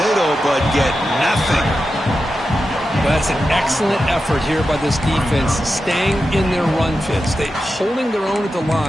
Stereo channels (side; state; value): both; normal; correlation 0.90